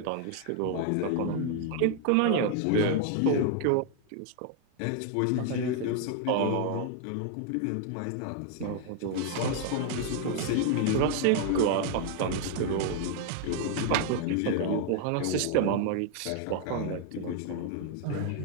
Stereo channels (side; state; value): both; different; correlation 0.00